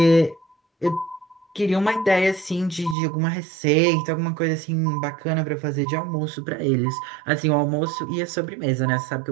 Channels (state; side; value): drops out; left; at 3.0 s